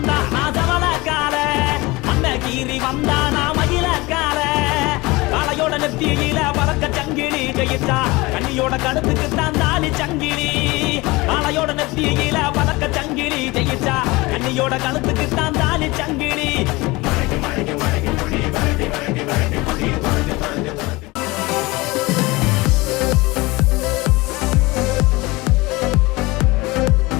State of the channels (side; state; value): right; quieter; 22.6 dB